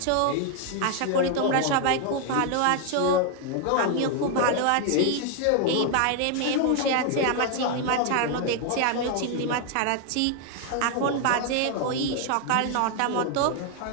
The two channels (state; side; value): different; both; correlation 0.00